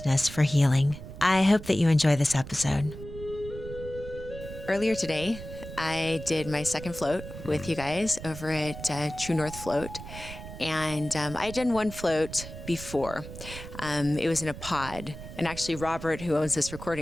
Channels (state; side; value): noise; right; rumble, 12 dB below the sound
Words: for healing. I hope that you enjoy this episode. Earlier today, I did my second float with you guys over at True North Float. And I had done one float before. It was in a pod. And actually, Robert, who owns this